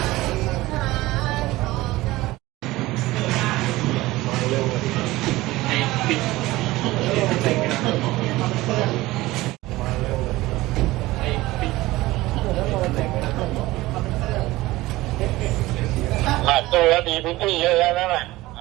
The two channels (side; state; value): left; quieter; 18.5 dB